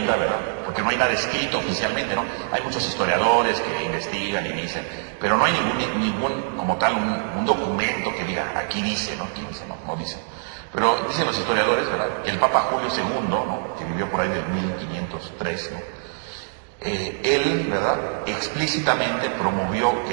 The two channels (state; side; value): silent; left; digital silence